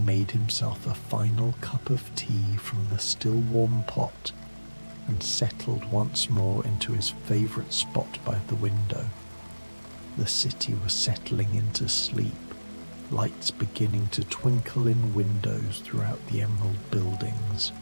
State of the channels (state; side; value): inverted; both; correlation -1.00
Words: himself a final cup of tea from the still warm pot and settled once more into his favourite spot by the window. The city was settling into sleep, lights beginning to twinkle in windows throughout the emerald buildings.